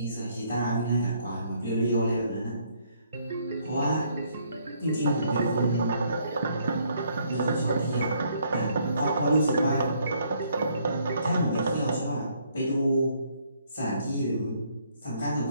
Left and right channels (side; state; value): both; inverted; correlation -0.67